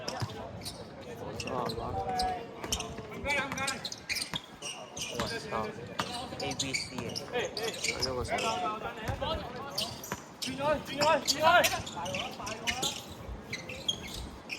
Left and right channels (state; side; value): identical; both; correlation 1.00